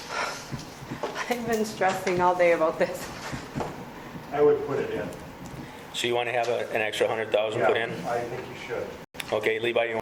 I've been stressing all day about this. I would put it in. So you want to have an extra 100,000 put in? Yeah, I think you should. Okay, Levi, you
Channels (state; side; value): identical; both; correlation 1.00